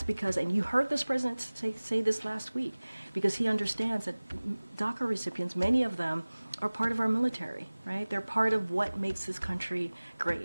because, and you heard this president say this last week, because he understands that DACA recipients, many of them are part of our military, right? They're part of what makes this country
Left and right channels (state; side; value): inverted; both; correlation -1.00